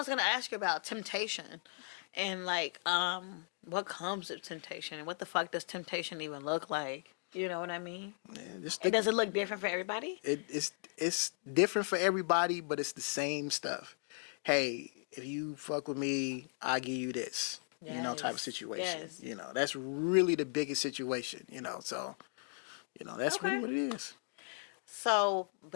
going to ask you about, temptation. And like, what comes with temptation? And what the fuck does temptation even look like? You know what I mean? Yeah, does it look different for everybody? It's different for everybody, but it's the same stuff. Hey, if you fuck with me, I'll give you this. You know, type of situation. You know, that's really the biggest situation, you know. So, you know, that's really what it is. So,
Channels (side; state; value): right; silent; 53 dB below the other